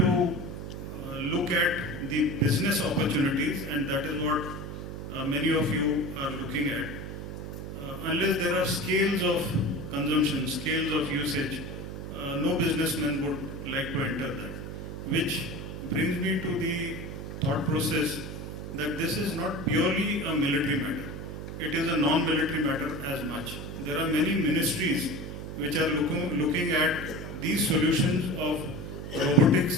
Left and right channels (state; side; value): noise; right; hum, 8 dB below the sound